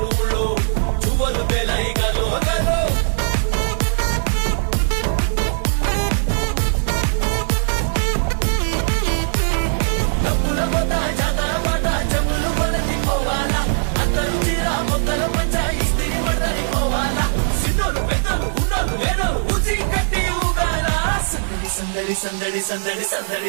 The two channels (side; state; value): left; silent; digital silence